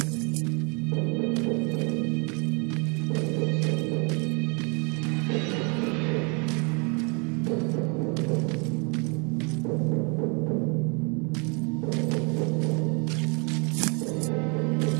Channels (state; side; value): quieter; left; 33.9 dB